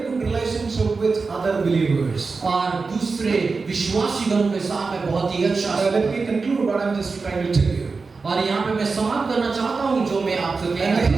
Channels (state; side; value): quieter; left; 4.4 dB